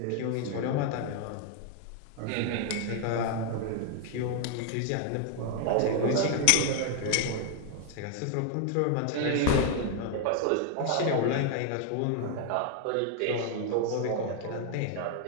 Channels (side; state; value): both; different; correlation 0.00